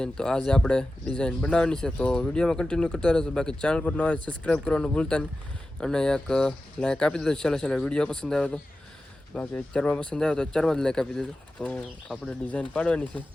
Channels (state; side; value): normal; both; correlation 0.94